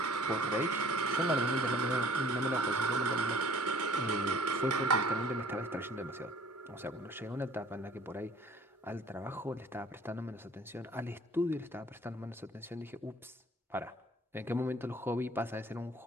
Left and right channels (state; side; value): normal; both; correlation 0.53